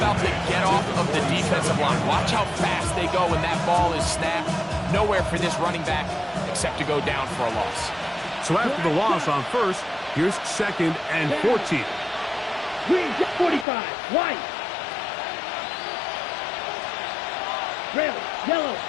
the get-off of the defensive line. Watch how fast they go when that ball is snapped. Nowhere for this running back except to go down for a loss. So after the loss on 1st, here's 2nd and 14. Green, 45. White. Red, yellow.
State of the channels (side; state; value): right; drops out; at 13.7 s